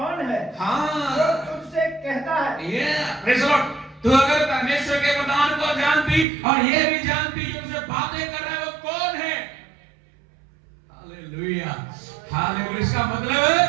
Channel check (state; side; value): drops out; left; at 6.2 s